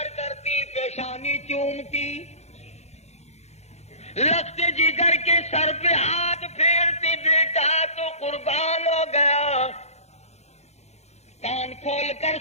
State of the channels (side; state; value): right; late; 0.32 ms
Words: کرتی پیشانی چومتی لگتے جگر کے سر پہ ہاتھ پھیرتی بیٹا تو قربان ہو گیا. کان کھول کر